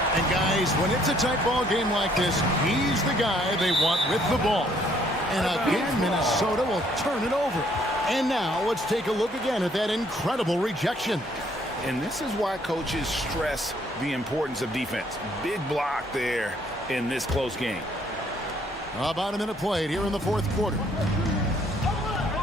And guys, when it's a tight ball game like this, he's the guy they want with the ball. And again, Minnesota will turn it over. And now let's take a look again at that incredible rejection. And this is why coaches stress the importance of defense. Big block there in this close game. About a minute played here in the 4th quarter.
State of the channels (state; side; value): normal; both; correlation 0.65